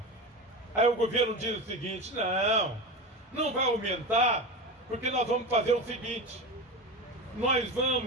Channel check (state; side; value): normal; both; correlation 0.25